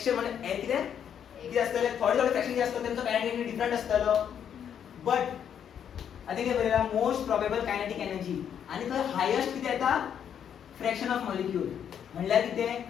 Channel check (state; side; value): quieter; right; 8.7 dB